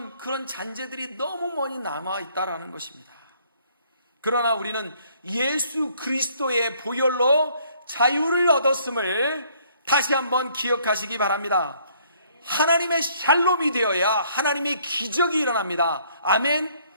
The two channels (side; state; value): both; inverted; correlation -0.63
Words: 그런 잔재들이 너무 많이 남아있다라는 것입니다. 그러나 우리는 예수 그리스도의 보혈로 자유를 얻었음을 다시 한번 기억하시기 바랍니다. 하나님의 샬롬이 되어야 하나님의 기적이 일어납니다. 아멘.